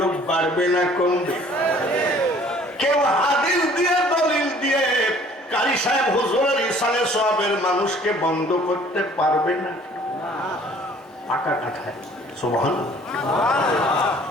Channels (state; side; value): normal; both; correlation 0.54